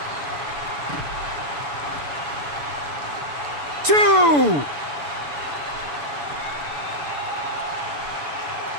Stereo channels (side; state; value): left; late; 6.9 ms